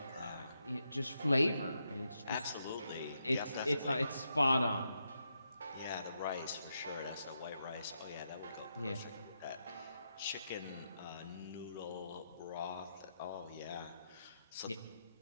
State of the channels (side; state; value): both; inverted; correlation -0.82